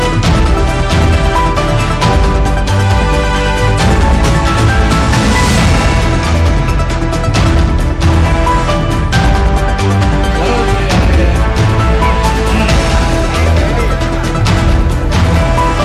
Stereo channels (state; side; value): identical; both; correlation 1.00